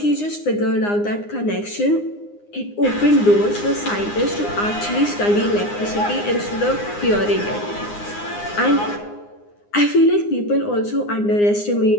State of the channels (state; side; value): late; right; 9.7 ms